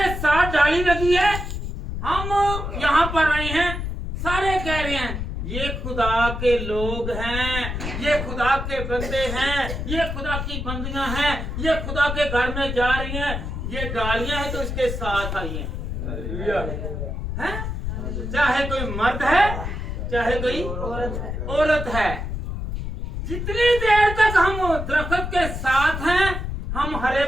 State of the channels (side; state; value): left; noise; rumble, 5 dB below the sound